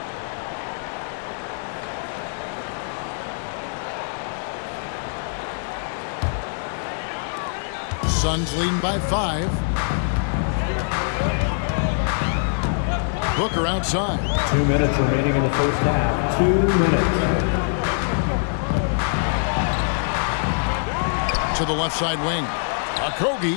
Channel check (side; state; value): right; silent; 63 dB below the other